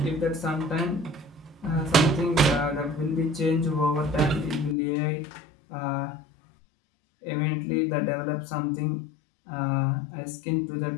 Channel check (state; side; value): drops out; right; at 4.8 s